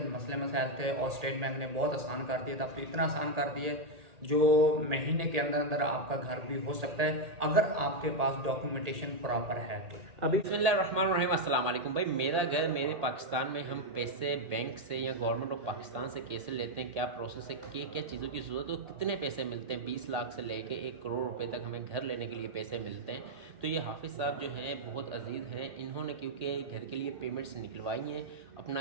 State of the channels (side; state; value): left; late; 1.8 ms